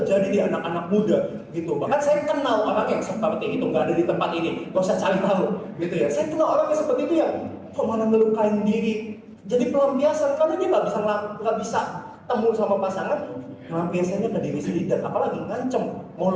di anak-anak muda gitu. Bahkan saya kenal orang yang seperti itu, nggak ada di tempat ini, nggak usah cari tahu gitu ya. Saya kenal orang yang seperti itu ya, kok malah melukain diri. Jadi pelampiasan, karena dia nggak bisa temu sama pasangan, pelampiasannya ke diri sendiri, dan apalagi ngancem mau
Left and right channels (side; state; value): both; identical; correlation 1.00